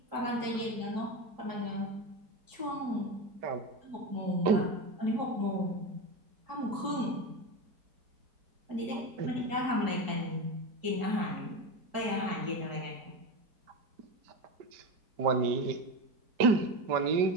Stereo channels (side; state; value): left; late; 5.1 ms